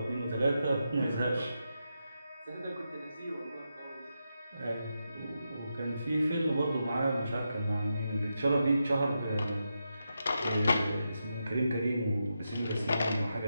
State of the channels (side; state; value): both; inverted; correlation -0.86